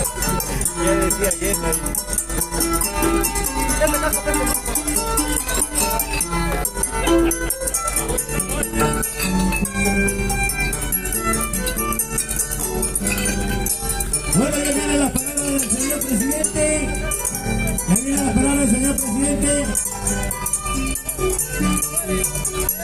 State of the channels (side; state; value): both; identical; correlation 1.00